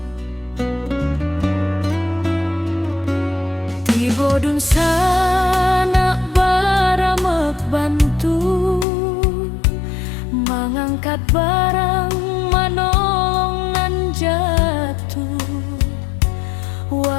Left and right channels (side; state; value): right; drops out; at 8.8 s